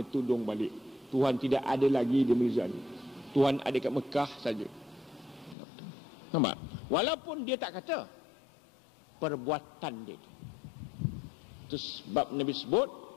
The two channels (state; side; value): drops out; right; at 5.6 s